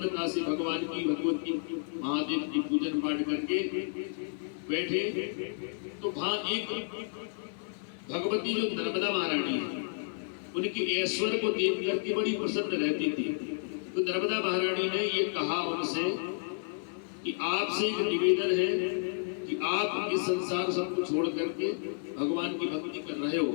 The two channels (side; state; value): right; silent; 57 dB below the other